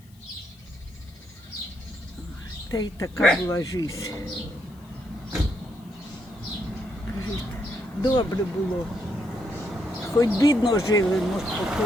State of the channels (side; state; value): left; noise; hiss, 29 dB below the sound